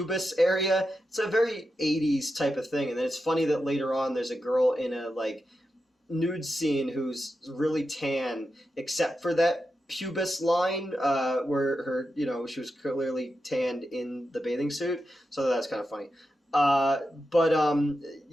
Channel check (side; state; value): both; normal; correlation 0.89